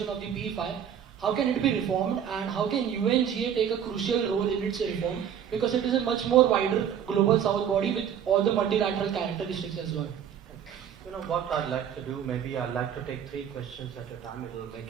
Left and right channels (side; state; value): left; quieter; 8.8 dB